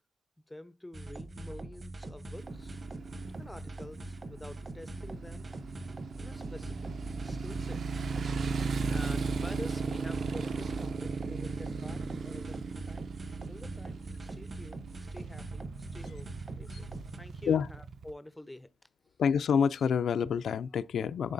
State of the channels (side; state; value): both; normal; correlation 0.79